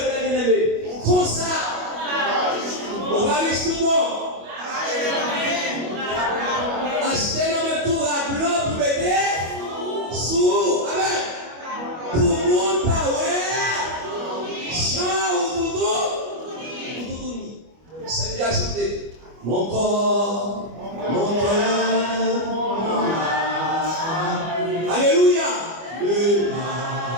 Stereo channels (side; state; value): left; late; 25 ms